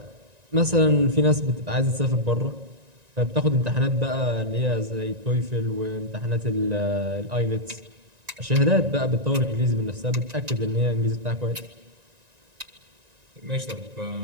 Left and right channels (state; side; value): late; left; 1.9 ms